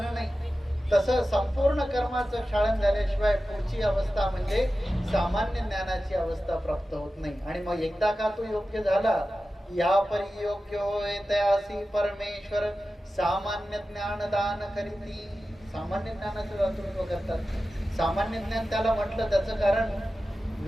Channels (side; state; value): both; normal; correlation 0.94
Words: नाही. तसं संपूर्ण कर्माचं क्षालन झाल्याशिवाय पुढची अवस्था म्हणजे सामान्य ज्ञानाची अवस्था प्राप्त होत नाही. आणि मग एकदा का तो योग्य झाला, या परी योग्य होय तयासी परमेश्वर सामान्य ज्ञान दान करीती. सामान्य ज्ञानाचं दातृत्व करतात. सामान्य ज्ञान त्याला म्हटलं, त्याचं कारण